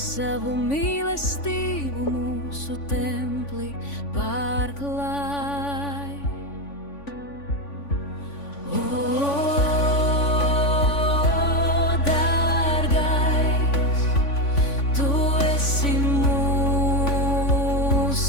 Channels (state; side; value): late; right; 3.5 ms